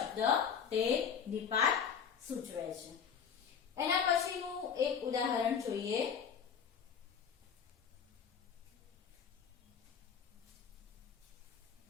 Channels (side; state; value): right; quieter; 7.2 dB